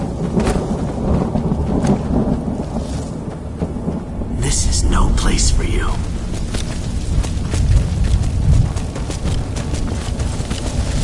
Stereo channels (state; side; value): identical; both; correlation 1.00